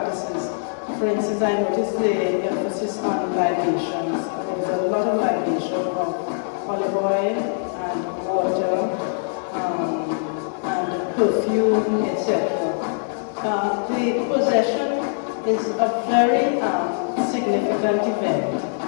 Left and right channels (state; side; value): silent; right; digital silence